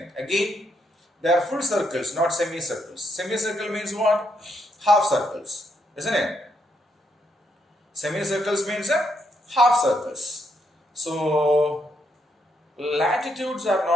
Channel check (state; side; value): normal; both; correlation 0.77